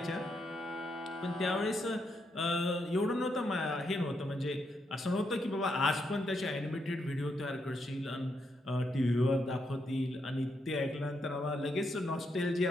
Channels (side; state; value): both; normal; correlation 0.80